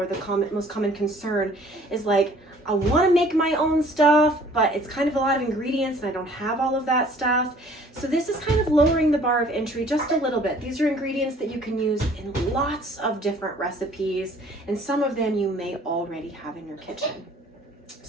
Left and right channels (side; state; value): both; normal; correlation 0.54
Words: the most common concern, is like, I want to make my own stuff, but it's kind of a lot of ingredients and I don't have all of that stuff. So this is kind of lowering the bar of entry just a little bit. These are ingredients that you can use in lots of different recipes, and some of them you may already have in your kitchen.